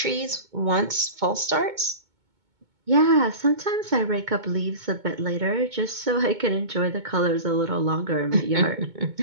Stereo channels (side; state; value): left; late; 2.2 ms